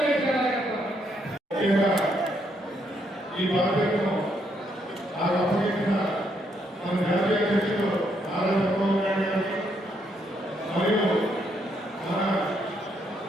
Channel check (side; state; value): both; normal; correlation 0.75